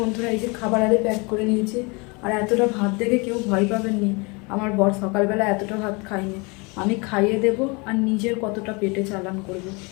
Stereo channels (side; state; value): right; quieter; 29.0 dB